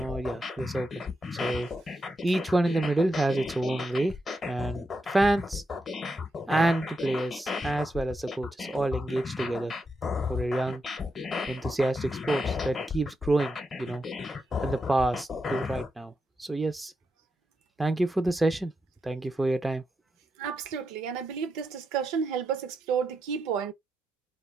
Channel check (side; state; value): both; normal; correlation 0.85